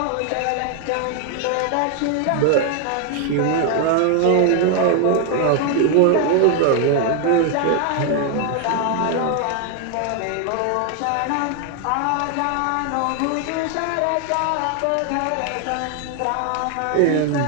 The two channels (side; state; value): both; different; correlation 0.00